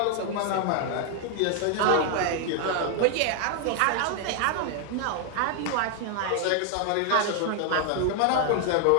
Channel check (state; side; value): different; both; correlation 0.01